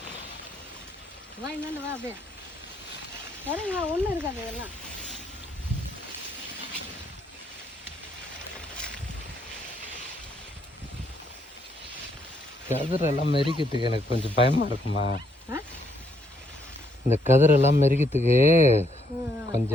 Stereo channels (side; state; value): both; normal; correlation 0.73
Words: வா, என்னன்னு வா, அப்படியே சரிங்களா, ஒன்றும் இருக்காது இதெல்லாம். கதிரெல்லாம் மெரிக்கிறதுக்கு எனக்கு கொஞ்சம் பயமா இருக்குமா. இந்த கதிரெல்லாம் மெரிக்கிறதுக்கு